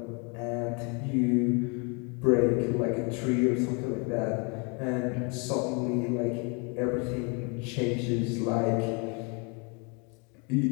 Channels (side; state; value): right; quieter; 33.7 dB